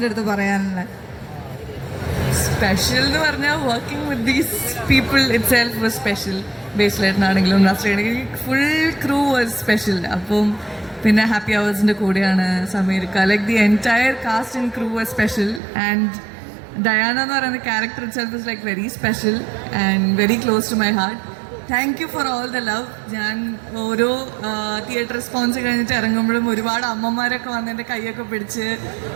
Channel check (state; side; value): drops out; left; at 15.6 s